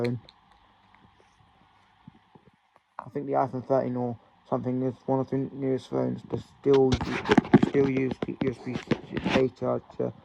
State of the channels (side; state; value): both; identical; correlation 1.00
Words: I think the iPhone 13 or something is one of the newest phones that still use the USB-A charger.